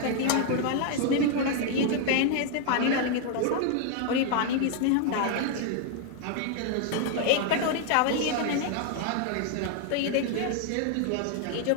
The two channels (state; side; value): different; both; correlation 0.00